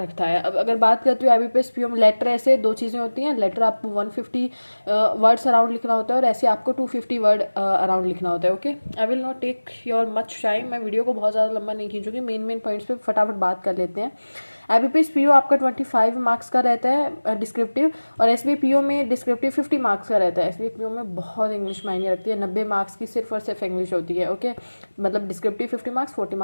है। अब अगर बात करते हो IBPS PO में, लेटर ऐसे दो चीज़ें होती हैं। लेटर आपको 150 वर्ड्स अराउंड लिखना होता है और ऐसे आपको 250 वर्ड अराउंड लिखना होता है। Okay, I will not take your much time. मैं वीडियो को बहुत ज़्यादा लंबा नहीं खींचूंगी, मेन पॉइंट्स पे फटाफट बात कर लेते हैं। IBPS PO आपका 25 मार्क्स का रहता है डिस्क्रिप्टिव, और SBA PO में डिस्क्रिप्टिव 50 मार्क्स का रहता है। SBA PO में बहुत इंग्लिश मायने रखती है, 90 मार्क्स की सिर्फ और सिर्फ इंग्लिश होती है। ओके, मतलब डिस्क्रिप्टिव 50 मार्क्स, 40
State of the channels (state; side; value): inverted; both; correlation -1.00